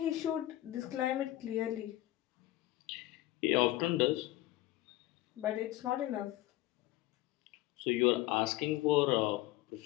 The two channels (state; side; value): quieter; right; 16.2 dB